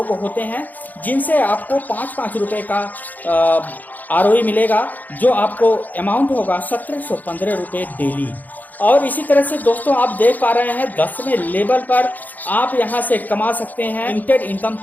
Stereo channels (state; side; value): late; right; 0.082 ms